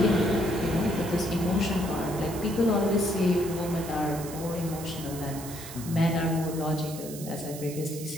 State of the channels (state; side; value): noise; right; hiss, 13 dB below the sound